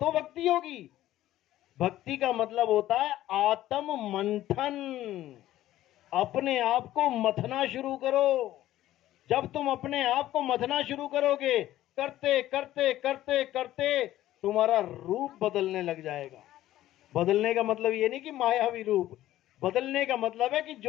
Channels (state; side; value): quieter; right; 14.2 dB